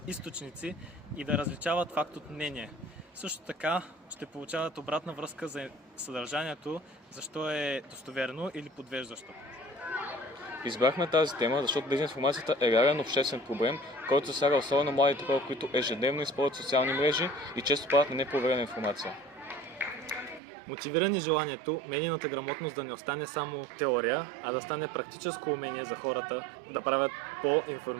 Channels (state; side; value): drops out; left; at 20.4 s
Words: източници и да различават факт от мнение. Също така ще получават обратна връзка за съдържанието, защо е достоверно или подвеждащо. Избрахме тази тема, защото дезинформацията е реален обществен проблем, който засяга особено младите хора, които ежедневно използват социални мрежи и често падат на непроверена информация. Мотивирани желанието медийната грамотност да не остане само теория, а да стане практическо умение за хората да правят